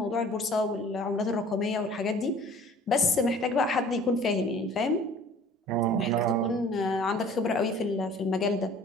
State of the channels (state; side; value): normal; both; correlation 0.50